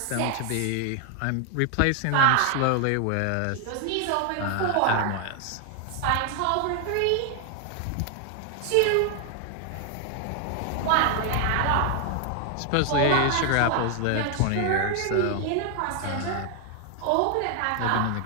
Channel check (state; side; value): different; both; correlation 0.00